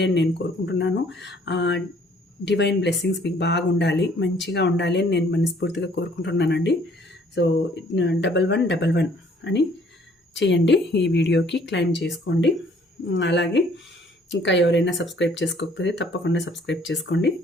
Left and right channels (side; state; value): both; normal; correlation 0.60